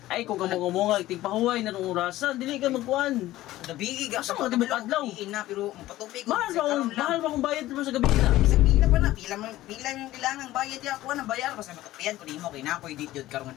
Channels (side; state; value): right; quieter; 15.8 dB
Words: Ay, kung kamunga-munga, tigpahuway na nung orasan, dili ka magkuhan. Gabi ga Asa mga tibok adlaw? na pero magpatupi ko. Mahal ba kung bayad mo sa gabi na? Isang pila pa na, pila yung kailangan bayad ya ako na bayar basta matupian ko nimo kay nakoy dit jud karong